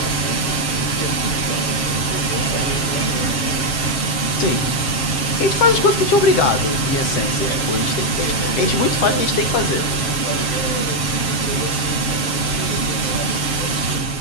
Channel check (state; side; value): late; right; 7.5 ms